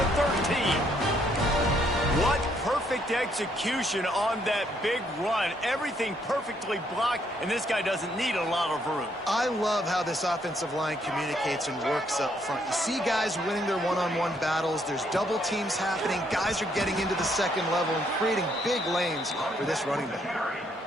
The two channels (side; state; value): both; normal; correlation 0.71